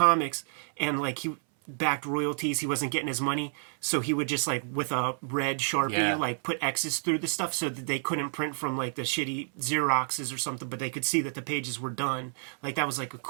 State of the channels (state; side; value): silent; left; 58 dB below the other